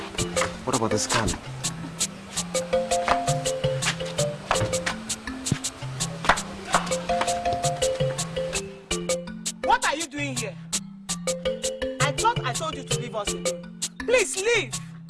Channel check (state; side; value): identical; both; correlation 1.00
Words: What about the scan? What are you doing here? I thought I told you to leave us alone. Please leave.